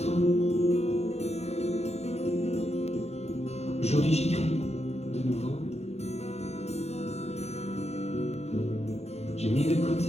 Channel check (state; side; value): late; right; 0.31 ms